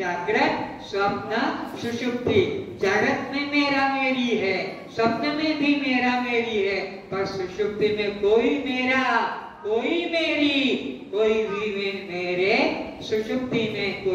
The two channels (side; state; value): both; identical; correlation 1.00